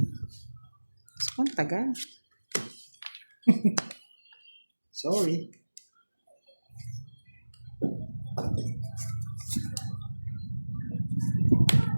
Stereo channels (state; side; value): inverted; both; correlation -1.00